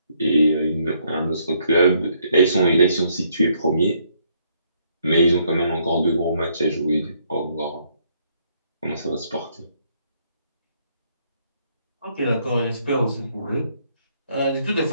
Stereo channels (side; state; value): both; inverted; correlation -0.71